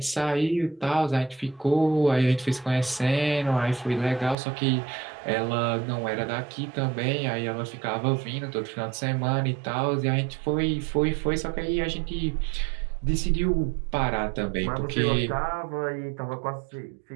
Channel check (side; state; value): left; drops out; at 4.4 s